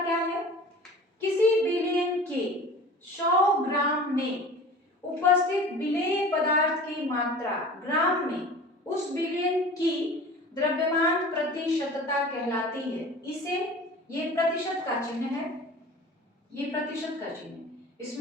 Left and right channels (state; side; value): normal; both; correlation 0.40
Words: क्या है। किसी विलयन के 100 ग्राम में उपस्थित विलेय पदार्थ की मात्रा ग्राम में उस विलयन की द्रव्यमान प्रतिशतता कहलाती है। इसे, ये प्रतिशत का चिन्ह है, ये प्रतिशत का चिन्ह